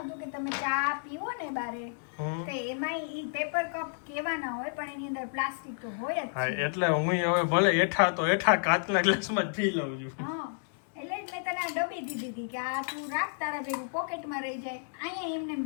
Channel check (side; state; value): right; silent; digital silence